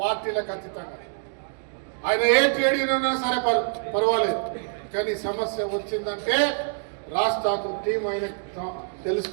పార్టీలకు అతీతంగా ఆయన ఏ ట్రేడ్ యూనియన్ ఉన్నా సరే పర్వాలేదు, కానీ సమస్య వచ్చిందంటే రాజ్ ఠాకూర్ టీం ఆయన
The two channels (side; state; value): left; silent; digital silence